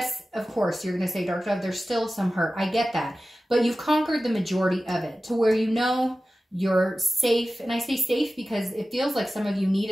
of course, you're going to say, Dark Dove, there's still some hurt. I get that. But you've conquered the majority of it to where you know you're safe. And I say safe because it feels like some of you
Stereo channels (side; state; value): both; normal; correlation 0.95